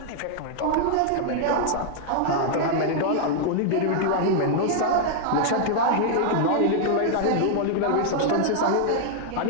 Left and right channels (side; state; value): both; different; correlation -0.01